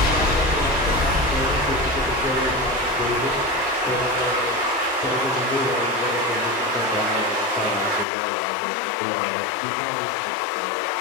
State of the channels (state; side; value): drops out; right; at 8.1 s